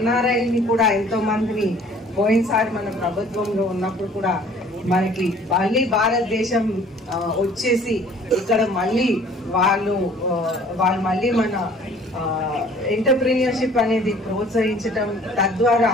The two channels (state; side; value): normal; both; correlation 0.53